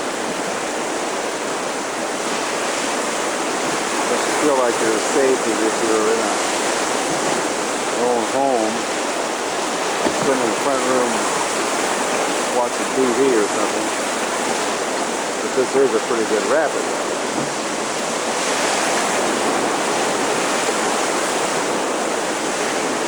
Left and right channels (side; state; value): both; identical; correlation 1.00